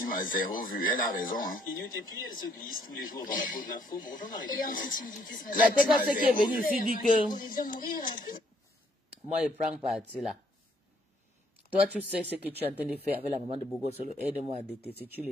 a 0 vue, elle a raison. Hein. Et puis elle se glisse tous les jours dans la peau de l'info. Bonjour Marie. La TKC qui est venue ici dit que... Moi, je prends parti là. Toi, tu sais ce que tu es en train de faire avec la maman de Bogo Solo. Aide-moi à détester, tu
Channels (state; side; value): normal; both; correlation 0.67